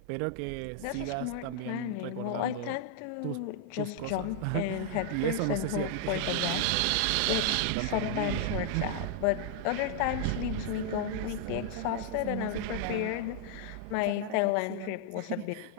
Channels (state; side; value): different; both; correlation -0.01